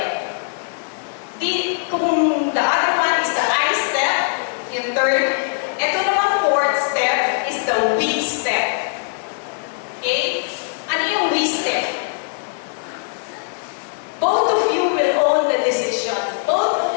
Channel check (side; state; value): right; silent; digital silence